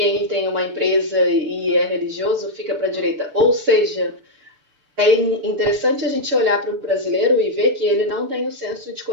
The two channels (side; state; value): left; late; 6.9 ms